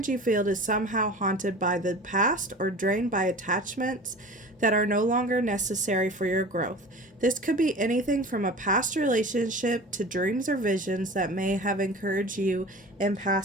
field is somehow haunted by the past or drained by attachments that are no longer necessary for your growth. This could be anything from a past relationship to dreams or visions that may have encouraged you in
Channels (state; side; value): normal; both; correlation 0.38